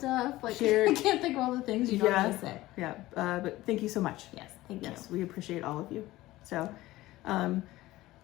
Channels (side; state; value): right; quieter; 17.3 dB